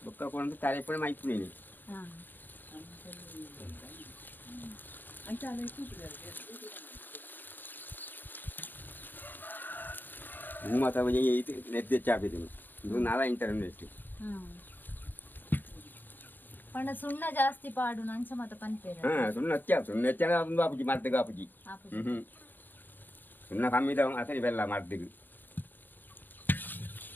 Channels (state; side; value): late; right; 0.090 ms